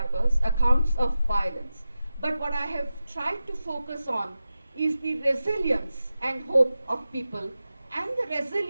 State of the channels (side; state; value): both; inverted; correlation -0.93